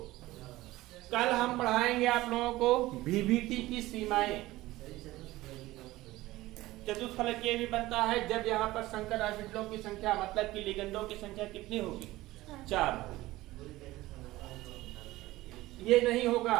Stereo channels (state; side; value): quieter; left; 17.8 dB